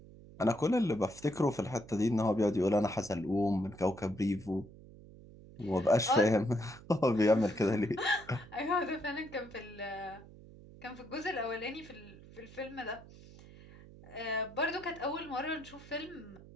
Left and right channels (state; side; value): noise; right; hum, 19 dB below the sound